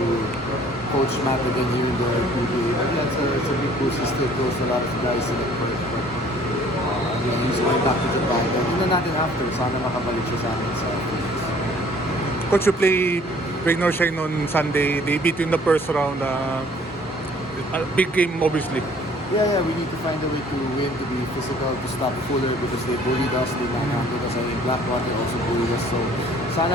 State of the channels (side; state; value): both; normal; correlation 0.55